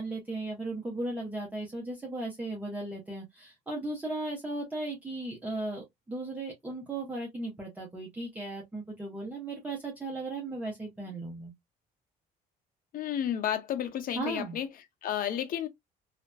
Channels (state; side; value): normal; both; correlation 0.46